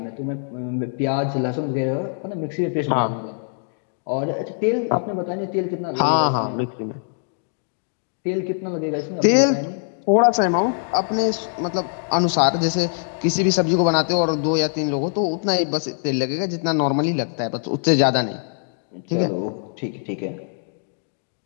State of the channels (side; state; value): right; silent; digital silence